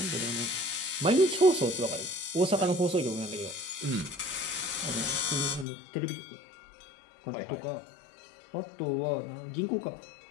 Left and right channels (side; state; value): right; drops out; at 5.7 s